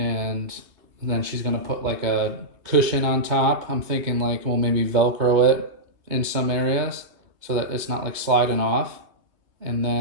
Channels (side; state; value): left; late; 2.7 ms